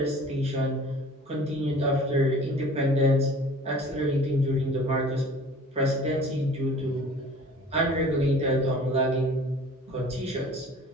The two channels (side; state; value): both; normal; correlation 0.46